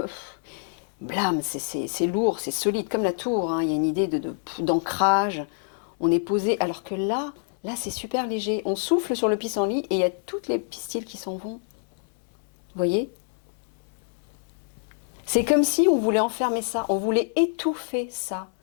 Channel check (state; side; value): silent; right; 61 dB below the other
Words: blâme, c'est lourd, c'est solide, comme la tour. Hein. Il y a une idée d'ancrage. On est posé, alors que là c'est super léger. On souffle sur le pissenlit et il y a toutes les pistils qui s'en vont. Vous voyez ? C'est comme si on voulait enfermer ça, on voulait étouffer ça,